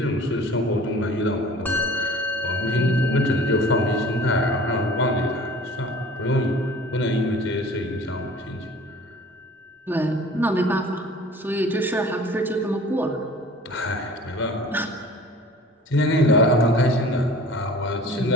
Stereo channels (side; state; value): both; normal; correlation 0.45